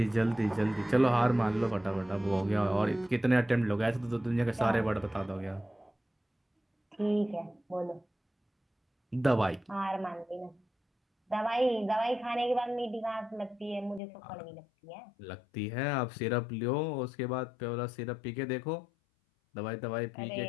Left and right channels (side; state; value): right; drops out; at 14.0 s